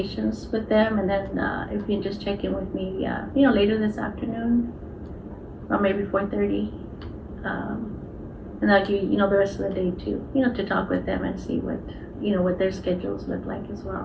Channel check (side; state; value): both; identical; correlation 1.00